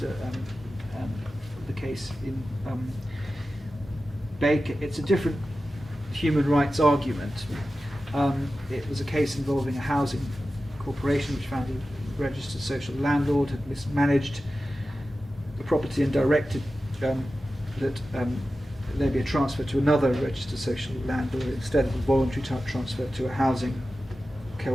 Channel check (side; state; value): both; normal; correlation 0.94